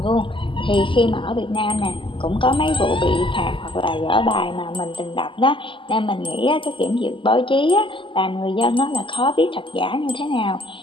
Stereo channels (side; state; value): right; late; 0.25 ms